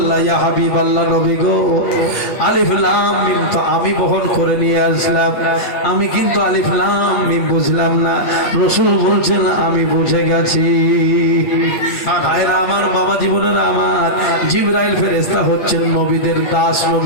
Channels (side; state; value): right; late; 8.8 ms